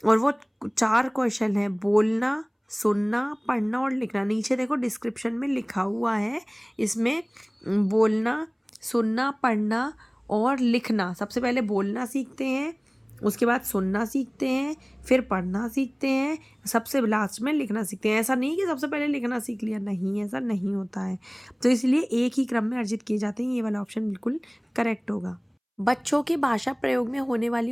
और वो 4 कौशल हैं: बोलना, सुनना, पढ़ना और लिखना। नीचे देखो डिस्क्रिप्शन में लिखा हुआ है, इसमें बोलना, सुनना, पढ़ना और लिखना। सबसे पहले बोलना सीखते हैं, उसके बाद सुनना सीखते हैं, फिर पढ़ना सीखते हैं, सबसे लास्ट में लिखना सीखते हैं। ऐसा नहीं कि सबसे पहले लिखना सीख लिया, नहीं, ऐसा नहीं होता है। तो इसलिए एक ही क्रम में अर्जित किए जाते हैं। ये वाला ऑप्शन बिल्कुल करेक्ट होगा। बच्चों के भाषा प्रयोग में होने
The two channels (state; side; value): identical; both; correlation 1.00